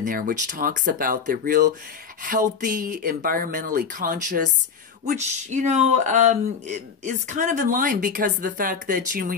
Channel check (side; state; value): right; quieter; 6.2 dB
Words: there, which talks about the real healthy, environmentally conscious, which, you know, is kind of in line because of the fact that, you know, when